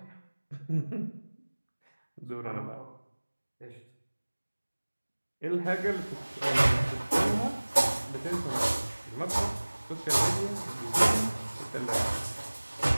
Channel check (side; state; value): both; inverted; correlation -1.00